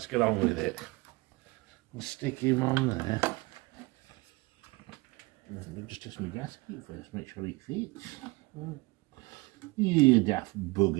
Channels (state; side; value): quieter; left; 23.8 dB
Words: get on with it. I'll stick him on there. Let me just test my gasket first, make sure it fits. You daft